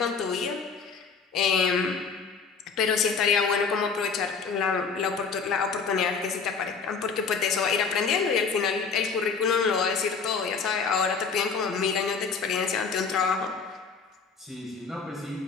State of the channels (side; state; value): right; quieter; 5.3 dB